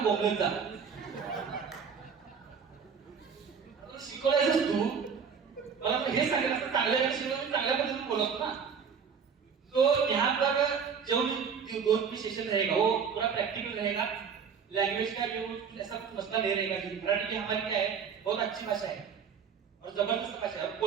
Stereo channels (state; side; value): quieter; left; 6.5 dB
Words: बोलने था, शिकवलायचंस तू, मला तो हे सांगितलं असतं चांगल्या शिकवलं चांगल्या पद्धतीने बोलत ना। तो यहाँ पर जो भी 2 सेशन रहेगा वो पूरा प्रैक्टिकल रहेगा, लैंग्वेज का जो ऐसा कुछ मसला नहीं रहेगा। मराठी की हमारी क्या है, बहुत अच्छी भाषा है और जबरदस्त भाषा है,